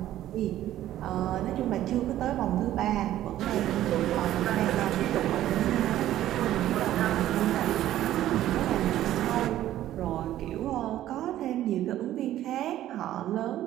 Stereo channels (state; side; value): quieter; left; 13.2 dB